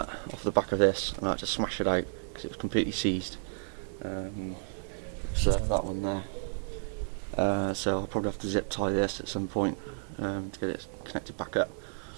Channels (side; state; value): left; silent; digital silence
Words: off the back of this, and I had to smash it out because it was completely seized. So that one there. So I'll probably have to zip tie this at some point to get it connected back up.